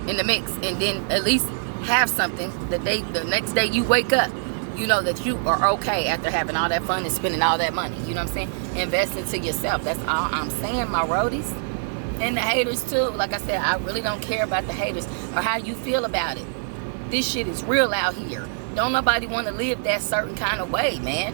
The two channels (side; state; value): left; silent; 63 dB below the other